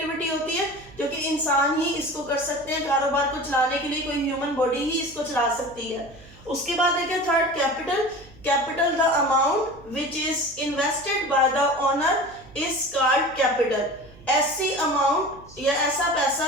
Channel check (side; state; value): right; noise; hum, 22 dB below the sound